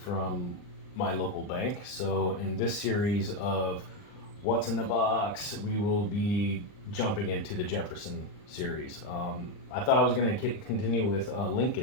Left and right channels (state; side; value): late; right; 39 ms